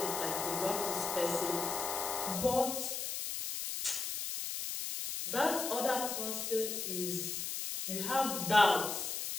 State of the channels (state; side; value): noise; left; hiss, 3 dB below the sound